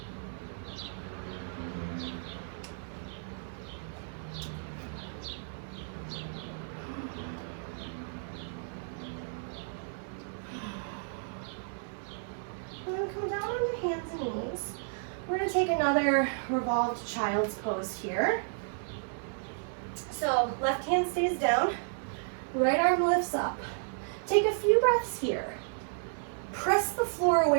And then come down on your hands and knees. We're going to take another revolved child's pose here. So left hand stays down, right arm lifts up. Take a few breaths here. Press the floor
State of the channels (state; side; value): silent; left; digital silence